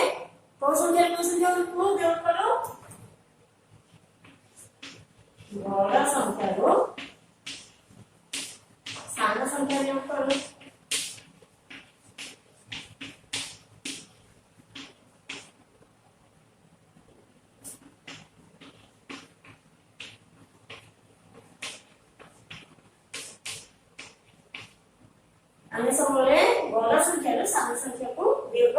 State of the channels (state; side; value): identical; both; correlation 1.00